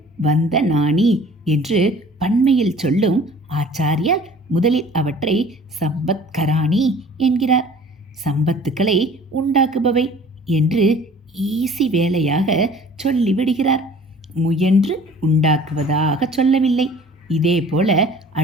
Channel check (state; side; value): normal; both; correlation 0.48